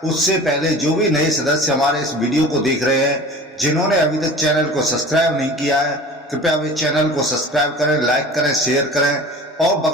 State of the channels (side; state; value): both; normal; correlation 0.40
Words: उससे पहले जो भी नए सदस्य हमारे इस वीडियो को देख रहे हैं, जिन्होंने अभी तक चैनल को सब्सक्राइब नहीं किया है, कृपया वे चैनल को सब्सक्राइब करें, लाइक करें, शेयर करें और